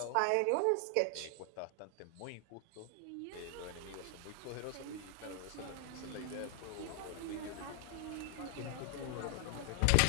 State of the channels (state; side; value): different; both; correlation 0.00